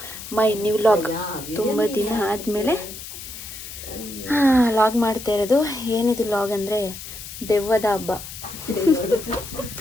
my new vlog. ತುಂಬ ದಿನ ಆದಮೇಲೆ log ಮಾಡ್ತಾ ಇರೋದು. ಏನಿದು ಲಾಗ್ ಅಂದರೆ ದೆವ್ವದ ಹಬ್ಬ.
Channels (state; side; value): noise; left; hiss, 12 dB below the sound